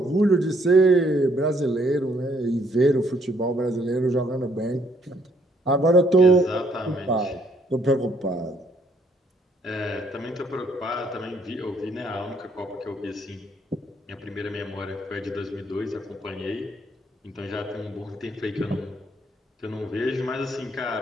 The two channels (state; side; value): normal; both; correlation 0.68